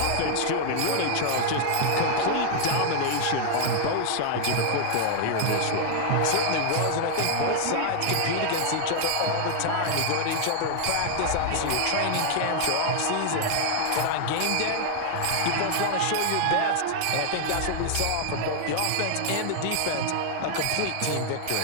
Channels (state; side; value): different; both; correlation 0.00